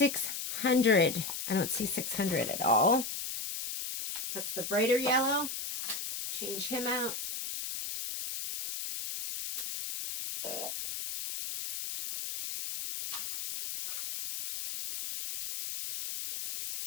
I don't see $600 at all. That's the brighter yellow. Change him out.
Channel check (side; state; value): left; noise; hiss, 5 dB below the sound